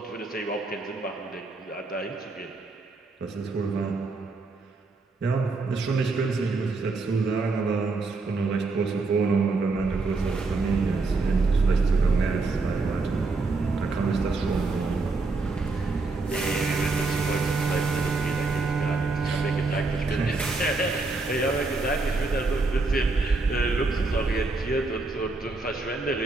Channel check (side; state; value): left; quieter; 3.7 dB